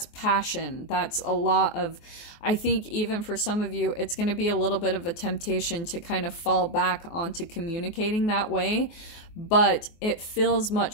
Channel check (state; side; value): late; right; 24 ms